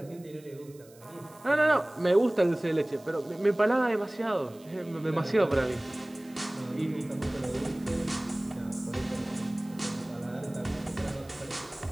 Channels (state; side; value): noise; right; hiss, 26 dB below the sound